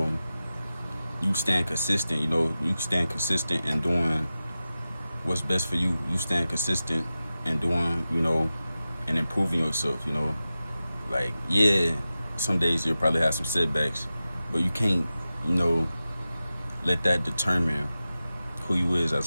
stand consistent, you stand consistent in doing what's best for you. You stand consistent in doing, and improving yourself, like, yeah, some days you'll probably have some setbacks, but you can't, let that determine who you is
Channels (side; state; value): both; inverted; correlation -0.95